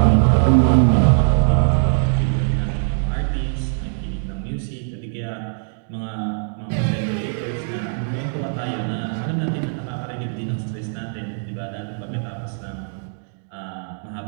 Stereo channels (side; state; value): left; silent; 64 dB below the other